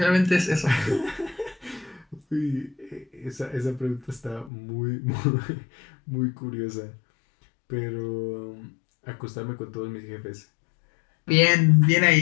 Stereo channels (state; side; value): drops out; right; at 4.5 s